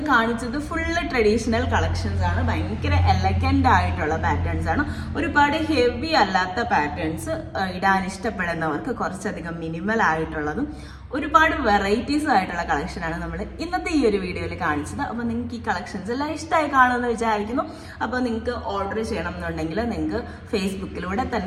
കാണിച്ചത് ഫുള്ള് ട്രഡീഷണൽ കളക്ഷൻസ് ആണ്. ഭയങ്കര എലഗന്റ് ആയിട്ടുള്ള പാറ്റേൺസ് ആണ്. ഒരുപാട് ഹെവി അല്ലാത്ത പാറ്റേൺസ് ഇടാൻ ഇഷ്ടപ്പെടുന്നവർക്ക് കുറച്ചധികം മിനിമൽ ആയിട്ടുള്ളതും ഒരുപാട് വെറൈറ്റീസ് ആയിട്ടുള്ള കളക്ഷനാണ് നമ്മൾ ഇന്നത്തെ ഈ ഒരു വീഡിയോയിൽ കാണിച്ചത്. അപ്പോൾ നിങ്ങൾക്ക് ഈ കളക്ഷൻസ് എല്ലാം ഇഷ്ടമായി കാണുമെന്ന് വിചാരിക്കുന്നു. അപ്പോൾ നിങ്ങൾക്ക് ഓർഡർ ചെയ്യണം എന്നുണ്ടെങ്കിൽ നിങ്ങൾക്ക് ഫേസ്ബുക്കിലൂടെ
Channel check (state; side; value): identical; both; correlation 1.00